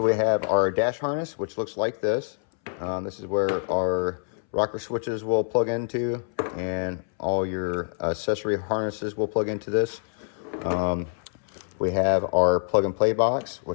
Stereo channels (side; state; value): right; silent; 61 dB below the other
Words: we have our dash harness, which looks like this. This is where our rocker switches will plug into, and all your accessory harnesses will plug into this. We have our plug and play box,